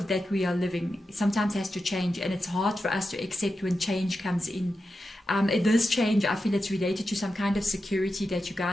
that we are living sometimes has to change, and it's hard for us to accept when change comes in. This change, I feel it's related to some kind of security that you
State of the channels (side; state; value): both; normal; correlation 0.90